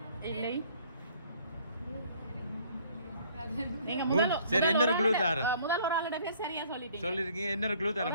இல்லை. நீங்க சரி, இன்னொரு க்ளூ தாரேன். முதல் ஒரு ஆளோட பேர் சரியா சொல்லிட்டீங்க. சொல்லிருக்கீங்க. இன்னொரு க்ளூ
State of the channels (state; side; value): inverted; both; correlation -0.58